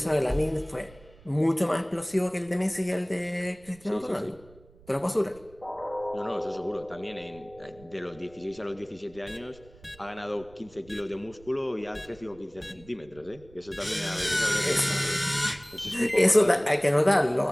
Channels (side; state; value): right; noise; rumble, 24 dB below the sound